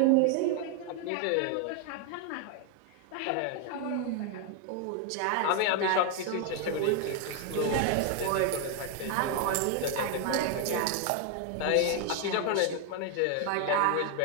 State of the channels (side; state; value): both; different; correlation 0.01